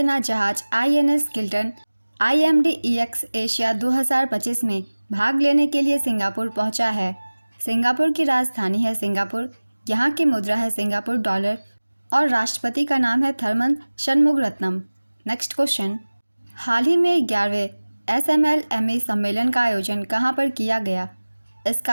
जहाज INS किल्टन IMDEX एशिया 2025 में भाग लेने के लिए सिंगापुर पहुंचा है। सिंगापुर की राजधानी है सिंगापुर। यहाँ की मुद्रा है सिंगापुर डॉलर और राष्ट्रपति का नाम है थरमन शनमुगरत्नम। नेक्स्ट क्वेश्चन, हाल ही में 11वें SMLME सम्मेलन का आयोजन कहाँ पर किया गया? इसका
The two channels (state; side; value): inverted; both; correlation -1.00